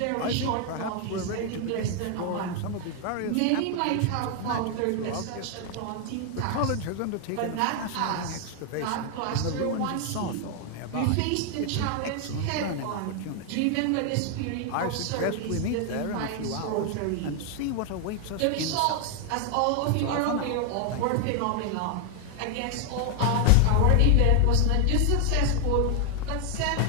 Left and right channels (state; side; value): different; both; correlation 0.00